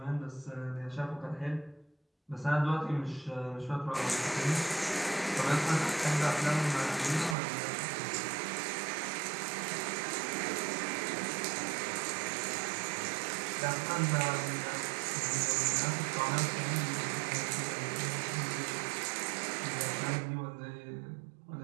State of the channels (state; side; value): drops out; left; at 7.4 s